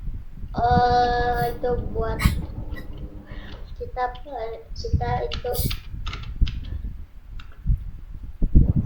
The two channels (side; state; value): both; identical; correlation 1.00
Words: itu buat kita itu